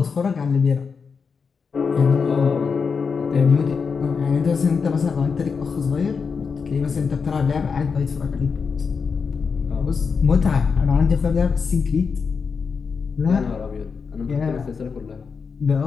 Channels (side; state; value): right; quieter; 5.5 dB